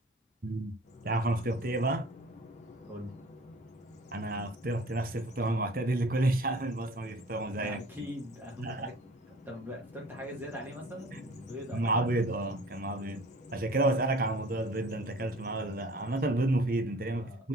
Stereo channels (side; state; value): both; normal; correlation 0.47